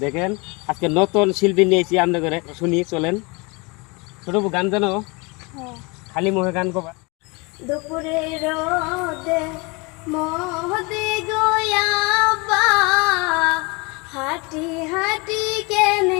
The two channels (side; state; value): right; quieter; 28.1 dB